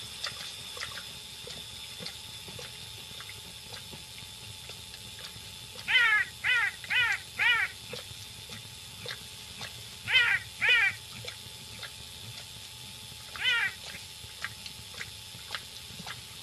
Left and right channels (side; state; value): both; identical; correlation 1.00